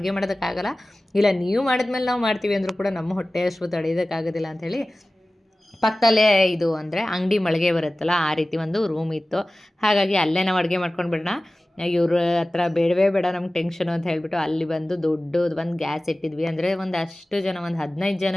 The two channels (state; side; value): normal; both; correlation 0.97